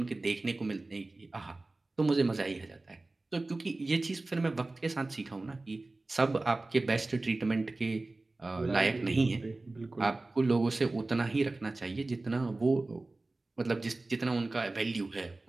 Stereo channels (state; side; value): quieter; left; 3.1 dB